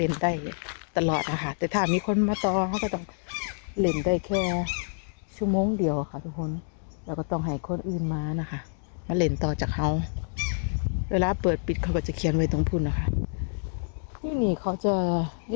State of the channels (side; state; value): right; silent; digital silence